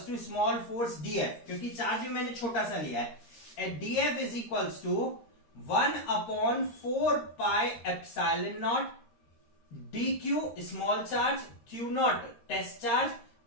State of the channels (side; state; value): right; late; 13 ms